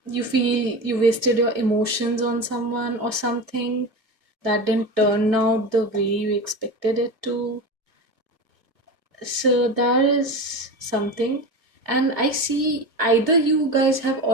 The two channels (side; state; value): left; late; 2.3 ms